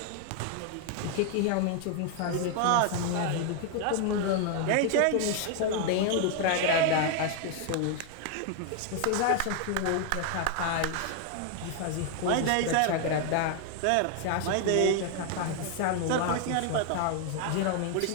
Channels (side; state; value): both; different; correlation 0.00